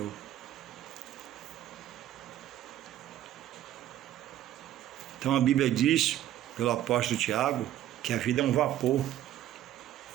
Então a Bíblia diz, pelo apóstolo Tiago, que a vida é um vapor.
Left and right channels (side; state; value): left; quieter; 12.5 dB